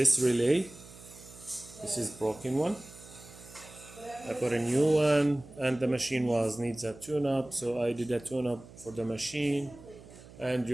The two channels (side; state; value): right; noise; hum, 19 dB below the sound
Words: relay. This is broken one. I put a new one, and the machine needs a tune-up, so I did a tune-up for the machine. And